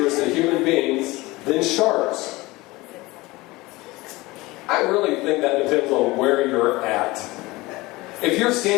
to human beings than sharks. I really think that depends on where you're at. If you're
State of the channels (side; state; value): right; quieter; 21.2 dB